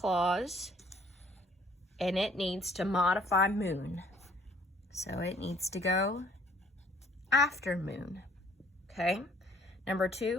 and it needs to modify moon. So it needs to go after moon, okay? Number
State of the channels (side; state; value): both; normal; correlation 0.59